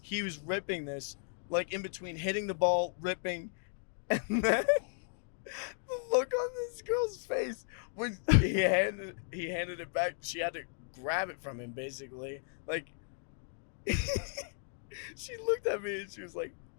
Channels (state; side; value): silent; right; 54 dB below the other